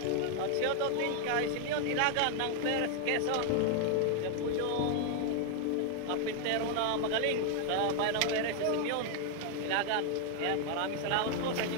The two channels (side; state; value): both; different; correlation 0.00